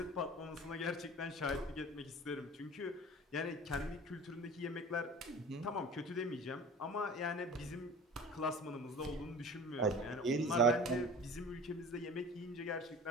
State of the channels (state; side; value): normal; both; correlation 0.40